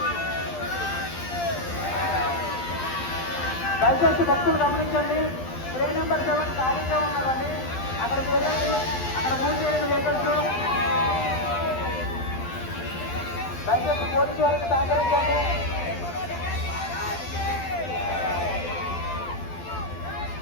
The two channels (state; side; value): late; right; 12 ms